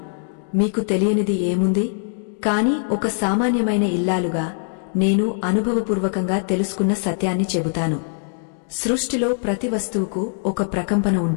మీకు తెలియనిది ఏముంది? కాని ఒక సామాన్యమైన ఇల్లాలుగా నేను అనుభవపూర్వకంగా తెలుసుకున్న సత్యాన్ని చెబుతాను. సృష్టిలో ప్రతి వస్తువుకు ఒక ప్రకంపన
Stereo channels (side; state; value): right; silent; 62 dB below the other